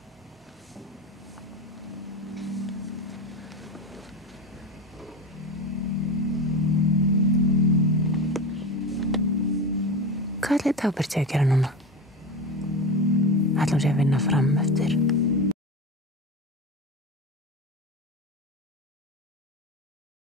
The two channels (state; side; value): normal; both; correlation 0.25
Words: Hvað ætli Dagbjört sé að gera núna? Ætli hún sé að vinna fram eftir?